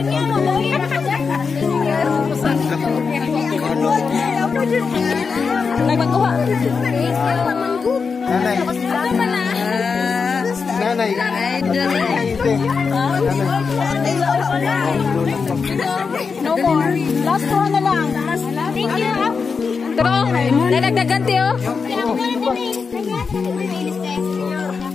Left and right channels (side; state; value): right; quieter; 5.2 dB